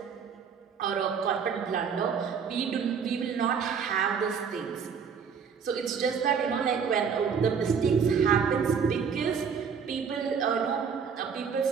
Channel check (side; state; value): left; quieter; 6.5 dB